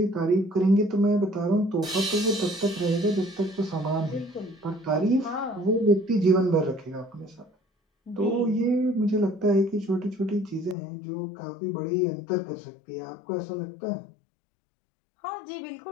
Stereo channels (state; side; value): drops out; right; at 10.8 s